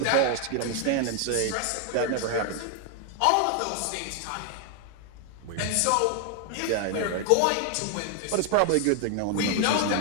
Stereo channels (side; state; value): both; different; correlation 0.00